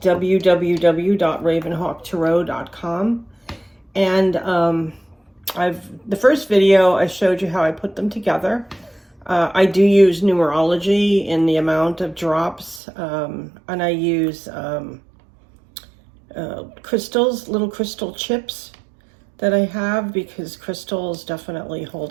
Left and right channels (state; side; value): drops out; left; at 12.8 s